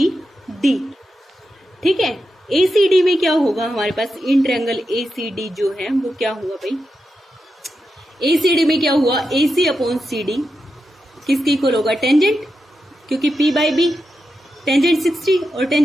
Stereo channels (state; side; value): normal; both; correlation 0.88